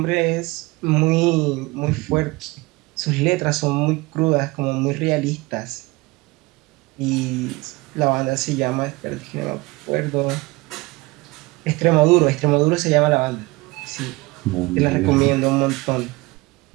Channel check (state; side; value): quieter; left; 22.8 dB